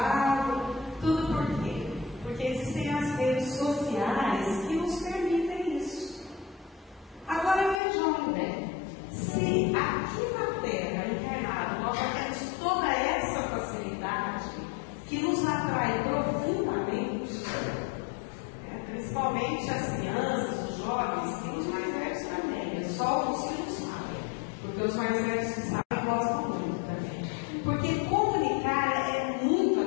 Tudo por quê? Porque existem as redes sociais que nos permitem isso. Agora vejam bem, se aqui na Terra, encarnado, nós já temos toda essa facilidade que nos atrai profundamente, principalmente as crianças, os jovens, e os mais velhos também, é só os que não sabem, porque os mais velhos que sabem gostam muito também. Porque comunicar é muito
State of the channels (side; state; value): right; drops out; at 7.8 s